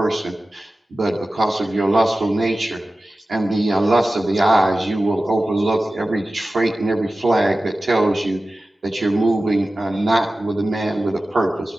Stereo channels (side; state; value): both; normal; correlation 0.95